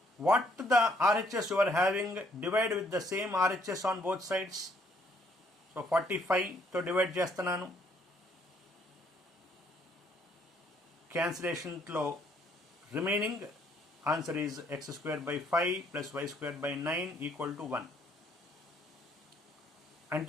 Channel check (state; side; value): normal; both; correlation 0.66